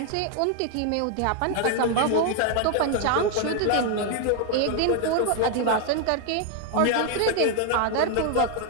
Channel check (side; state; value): both; different; correlation 0.00